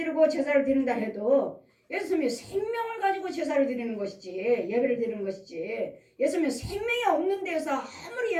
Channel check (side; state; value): both; identical; correlation 1.00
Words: 제사를 드린다 해도 예수님이 생명을 가지고 제사를 드리는 것이지 예배를 드리는 것이지 예수님이 생명이 없는 데서 아무리